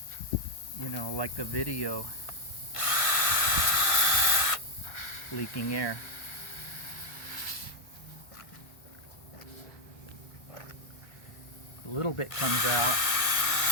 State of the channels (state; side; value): late; right; 1.4 ms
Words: you know, like the video, leaking air. A little bit comes out.